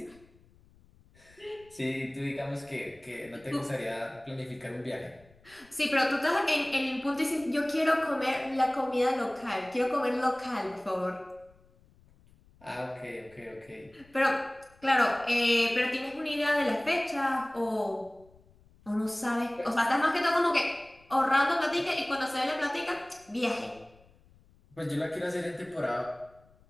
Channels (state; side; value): noise; left; rumble, 29 dB below the sound